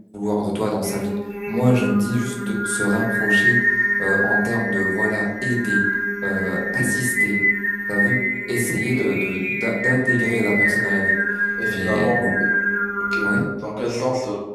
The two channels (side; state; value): both; identical; correlation 1.00